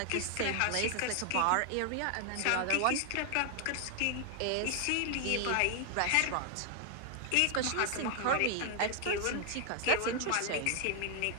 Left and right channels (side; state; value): both; different; correlation 0.00